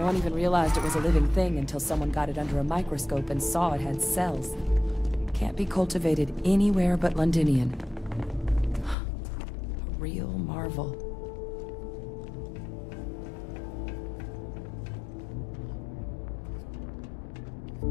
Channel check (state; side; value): drops out; right; at 9.0 s